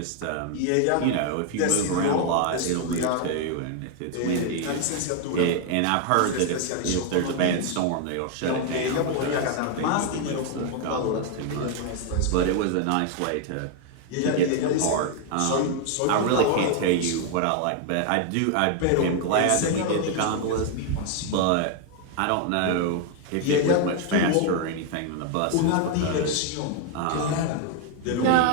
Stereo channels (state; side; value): different; both; correlation 0.01